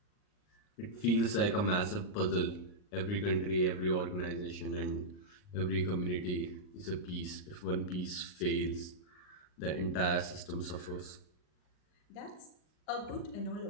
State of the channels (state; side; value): late; right; 39 ms